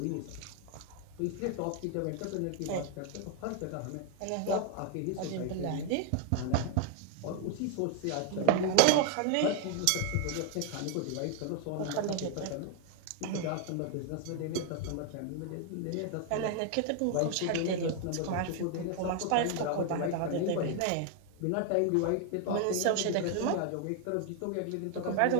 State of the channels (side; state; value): both; different; correlation 0.01